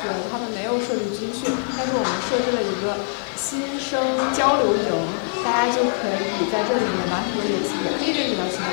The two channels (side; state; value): right; silent; 63 dB below the other